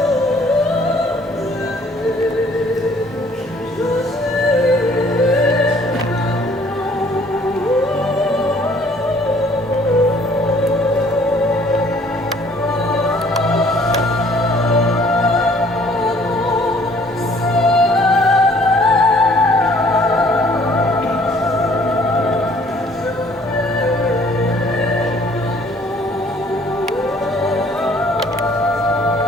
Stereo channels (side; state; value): both; normal; correlation 0.58